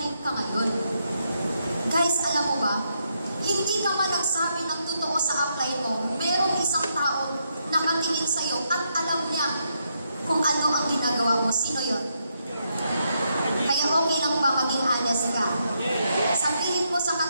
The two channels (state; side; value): inverted; both; correlation -0.79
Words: ka ngayon. Guys, alam mo ba, hindi ka man nagsabi ng totoo sa apply mo, merong isang tao nakatingin sa'yo at alam niya kung ano ang ginagawa mo. Sino yon? Kaya okay lang ba maging honest ka? Sabihin mo sa